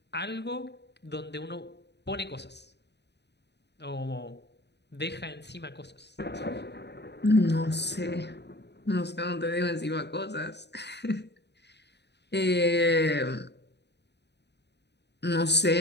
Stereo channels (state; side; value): late; right; 0.50 ms